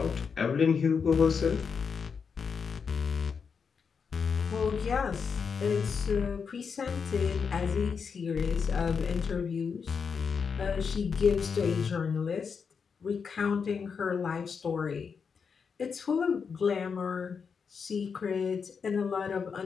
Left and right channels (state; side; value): quieter; right; 6.0 dB